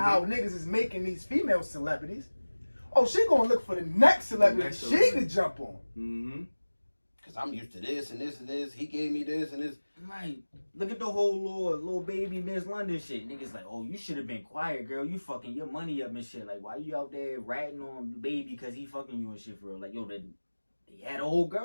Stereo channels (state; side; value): inverted; both; correlation -1.00